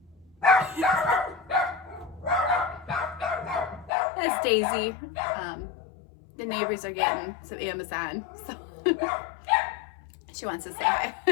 That's Daisy. The neighbors are getting some Amazon, so she wants to say hi.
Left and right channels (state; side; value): drops out; right; at 3.9 s